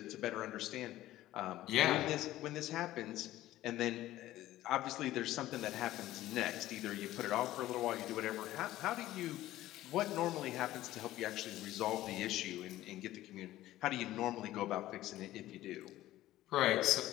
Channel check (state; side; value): quieter; right; 15.0 dB